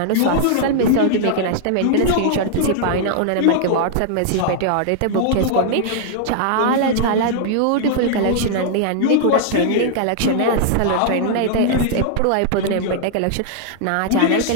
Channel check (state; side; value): different; both; correlation -0.01